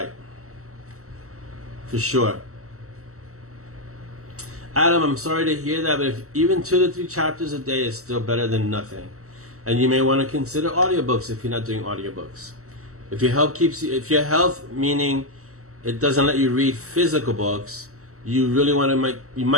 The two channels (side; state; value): left; late; 0.64 ms